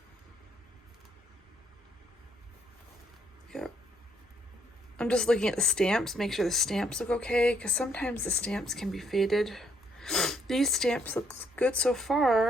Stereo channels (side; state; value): both; normal; correlation 0.70